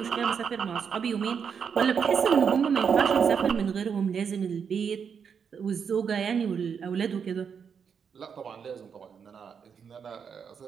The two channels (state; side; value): quieter; left; 6.8 dB